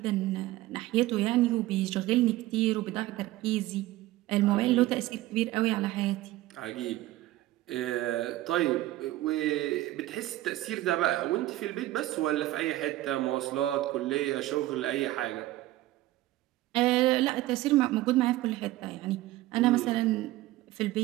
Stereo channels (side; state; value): left; quieter; 16.3 dB